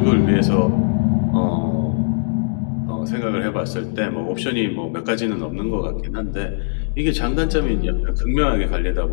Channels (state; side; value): silent; right; digital silence